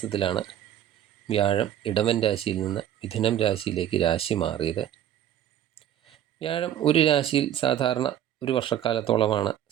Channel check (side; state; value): left; quieter; 11.1 dB